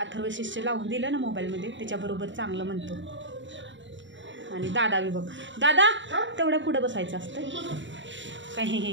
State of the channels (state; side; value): late; left; 0.54 ms